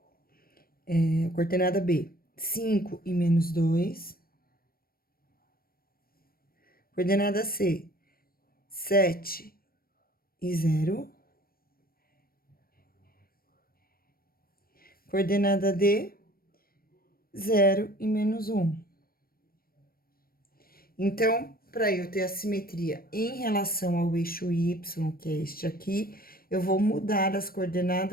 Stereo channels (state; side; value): late; right; 0.43 ms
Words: coordenada B, 5 e menos 2. Coordenada C, 7 e 0. Coordenada D, 0 e menos 1. Então, para eu ter a simetria em relação ao eixo Y, que é este aqui, eu vou mudar as